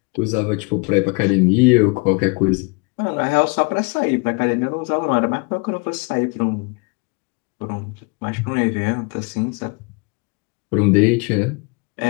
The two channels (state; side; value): quieter; right; 30.4 dB